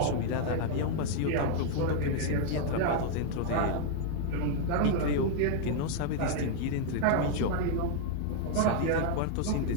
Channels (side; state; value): both; different; correlation 0.00